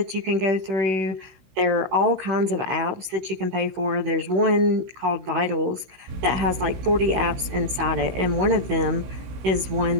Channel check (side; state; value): left; late; 16 ms